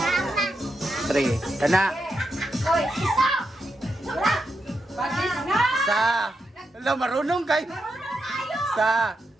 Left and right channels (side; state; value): both; normal; correlation 0.85